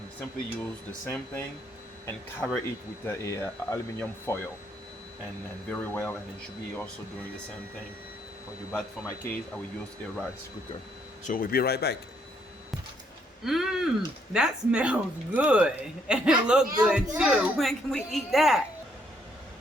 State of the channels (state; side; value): normal; both; correlation 0.70